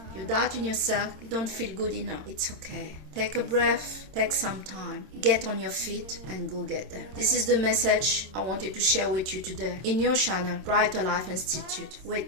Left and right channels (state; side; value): late; left; 27 ms